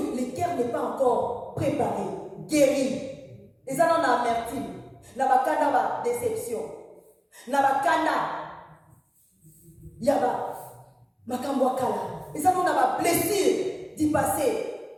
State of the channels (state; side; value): identical; both; correlation 1.00